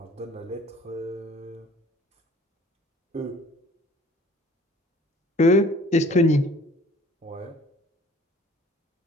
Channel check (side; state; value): both; normal; correlation 0.51